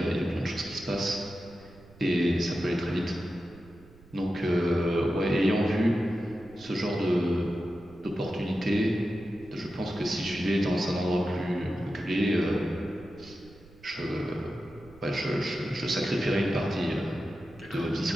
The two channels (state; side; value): noise; right; rumble, 23 dB below the sound